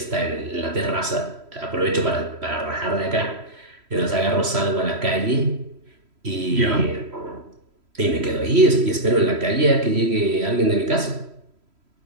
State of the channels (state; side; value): late; left; 3.1 ms